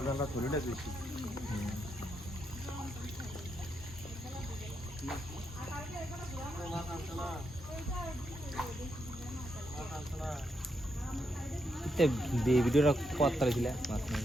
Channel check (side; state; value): both; normal; correlation 0.82